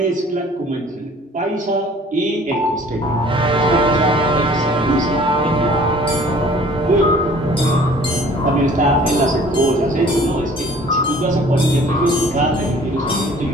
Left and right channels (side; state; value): both; normal; correlation 0.51